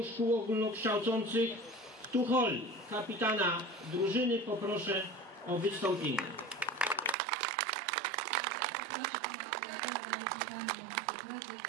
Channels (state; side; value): drops out; left; at 7.2 s